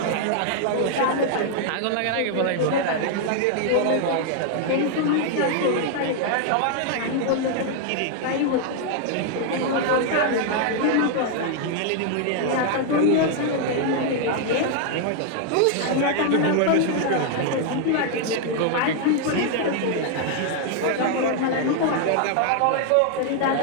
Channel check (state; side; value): different; both; correlation 0.00